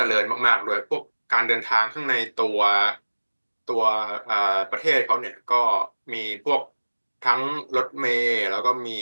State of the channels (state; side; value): inverted; both; correlation -1.00